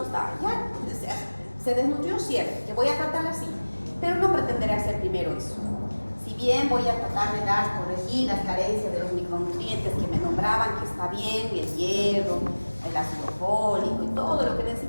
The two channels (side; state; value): both; inverted; correlation -1.00